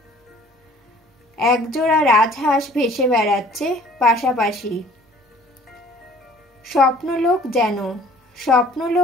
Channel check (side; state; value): both; normal; correlation 0.52